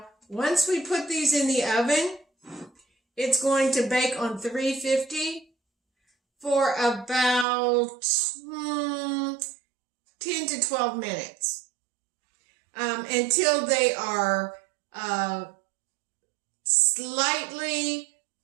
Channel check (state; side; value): drops out; left; at 7.5 s